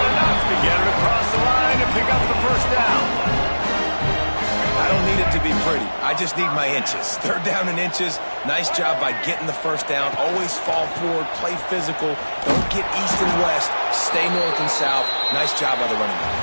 enough to get it across the line and pick up the first down. I don't need it to be pretty. I just need my inches. 3rd down and inches. Nice job by getting the first down. Always fall forward, play physical. Don't get east and west. stay north and south. Nice job by the running back.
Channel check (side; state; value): both; inverted; correlation -1.00